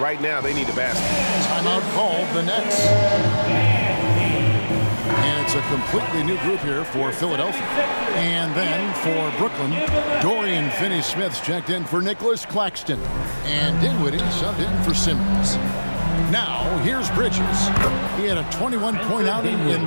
now, they need a basket. Timeout called the Nets. And it's a completely new group here for Philadelphia. And then for Brooklyn, Dorian Finney-Smith's checked in for Nicholas Claxton. And Dinwiddie subbed in for Simmons. Now, here's Bridges. He had a 21-point outing in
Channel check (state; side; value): inverted; both; correlation -1.00